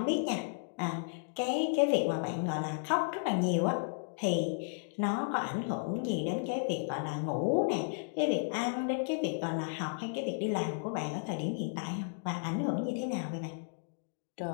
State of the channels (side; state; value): right; silent; digital silence